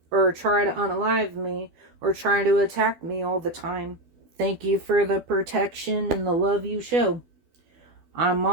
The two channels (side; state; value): left; late; 12 ms